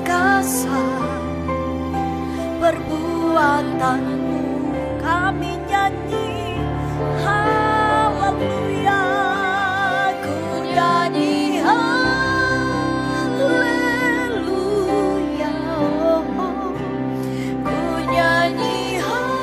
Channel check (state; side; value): identical; both; correlation 1.00